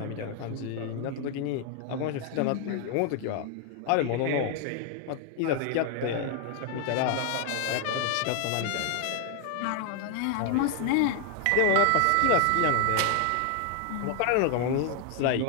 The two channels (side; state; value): both; different; correlation 0.00